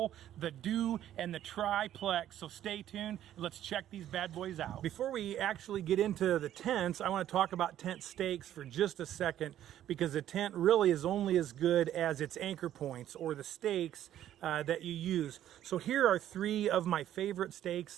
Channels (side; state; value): left; quieter; 11.7 dB